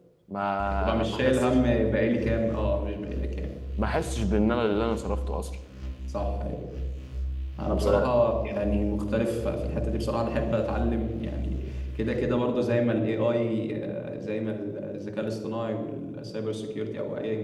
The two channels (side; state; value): both; identical; correlation 1.00